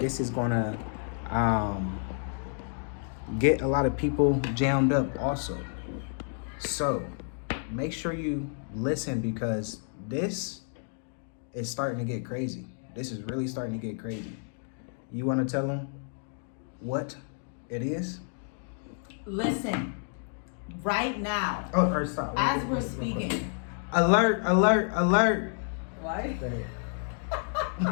is going to get a lot of people jammed up also. So make sure you listen because this is starting to get crazy. This is really starting to get crazy. You want to tell them what it is? Listen, right now, or stop. as we're speaking. Alert, alert, alert. What?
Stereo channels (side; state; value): right; silent; 57 dB below the other